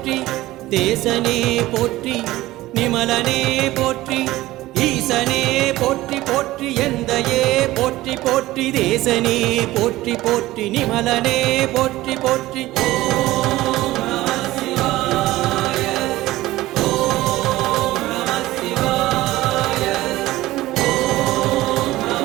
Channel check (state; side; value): quieter; left; 17.1 dB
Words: தேசனே போற்றி நிமலனே போற்றி ஈசனே போற்றி போற்றி எந்தையே போற்றி போற்றி தேசனே போற்றி போற்றி நிமலனே போற்றி போற்றி ஓம் நம சிவாய ஓம் நம சிவாய ஓம்